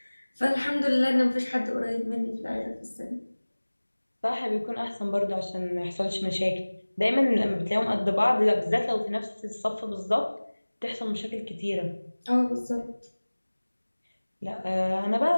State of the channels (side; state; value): both; inverted; correlation -1.00